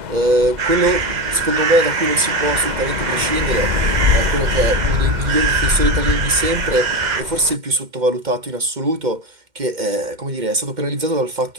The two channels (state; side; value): late; left; 2.1 ms